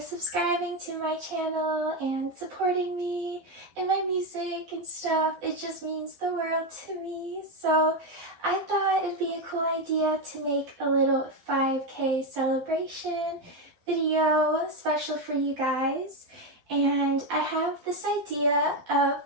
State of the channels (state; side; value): late; left; 12 ms